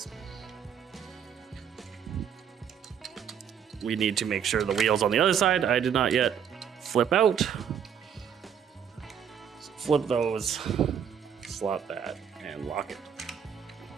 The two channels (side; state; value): left; quieter; 8.0 dB